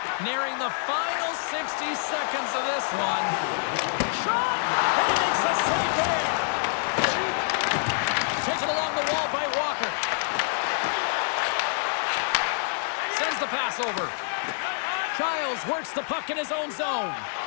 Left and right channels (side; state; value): right; silent; 61 dB below the other